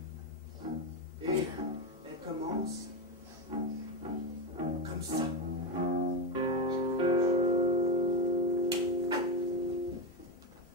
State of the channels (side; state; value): both; normal; correlation 0.12